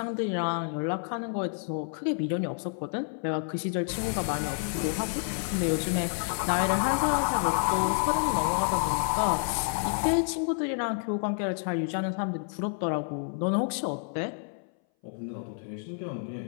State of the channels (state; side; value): silent; right; 58 dB below the other